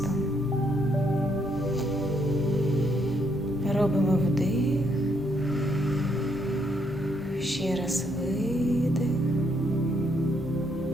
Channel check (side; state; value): both; normal; correlation 0.73